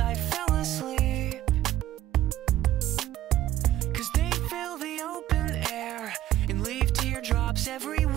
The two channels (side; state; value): left; quieter; 13.3 dB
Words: fell asleep. 'Cause they fill the open air and leave teardrops